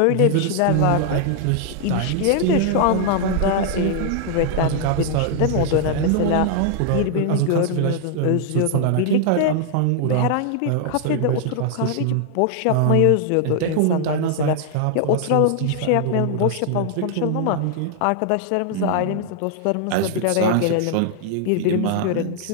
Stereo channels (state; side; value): different; both; correlation 0.00